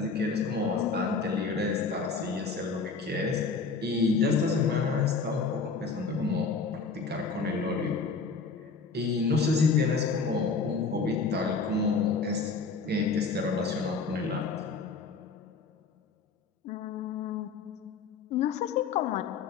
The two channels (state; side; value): quieter; right; 4.7 dB